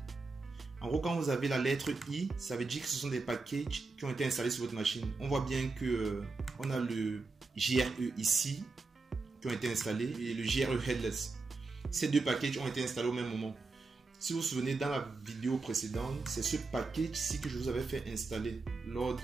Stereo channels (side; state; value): left; quieter; 3.8 dB